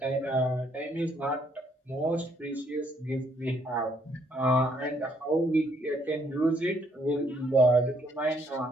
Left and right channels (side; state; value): both; normal; correlation 0.69